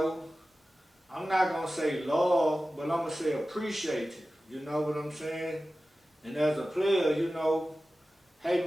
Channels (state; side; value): normal; both; correlation 0.95